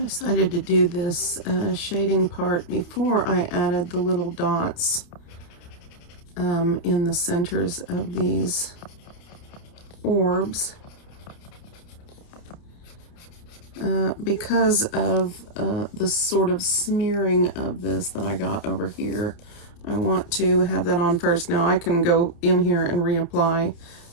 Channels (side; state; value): right; late; 29 ms